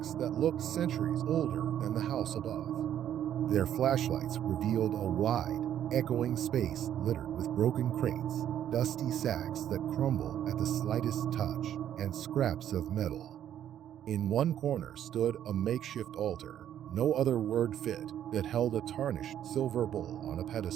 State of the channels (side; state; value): left; quieter; 10.5 dB